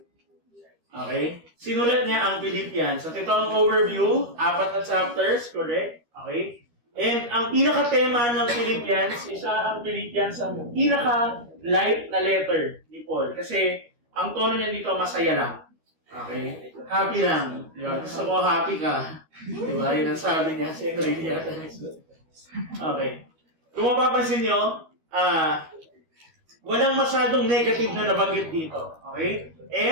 Okay? Sinulat niya ang Philippians. So, ito ang overview. 4 na chapters, correct? Okay? And ang pinaka-tema ng Philippians, ang Philippians ang pinaka-light na letter ni Paul. Kasi, ang tono niya dito, masaya lang. Okay? Happy lang. Diba? Gusto ko happy ka. Diba? Yun ang sabi niya sa Enrique. Okay. Kung mapapansin nyo, walang masyadong negative na nabanggit dito. Okay?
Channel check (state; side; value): late; left; 13 ms